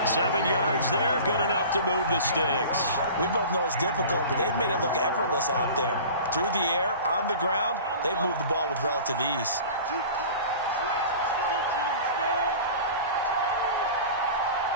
7 yards there, good enough to move the sticks. We both know it's difficult, but they've made it look effortless out there. Through the air, on the ground, they've moved the ball with relative ease.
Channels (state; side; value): inverted; both; correlation -0.39